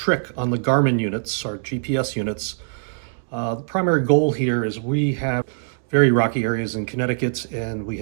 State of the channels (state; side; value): silent; left; 63 dB below the other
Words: on the Garmin units, our GPS units. The primary goal here is we have very rocky areas in Connecticut, and we